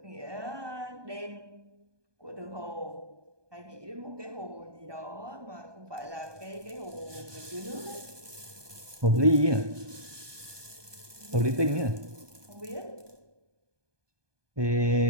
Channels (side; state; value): left; late; 1.2 ms